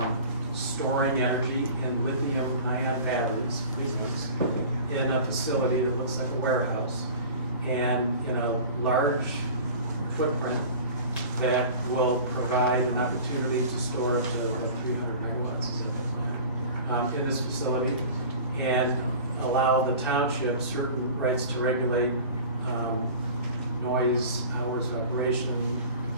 storing energy in lithium-ion batteries, big ones, in a facility that looks like a warehouse, and in a large footprint that will provide an opportunity to store up to like 300 megawatts is that, in this facility, and allow the township certain rights to regulate noise, hours of operation,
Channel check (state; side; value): inverted; both; correlation -0.40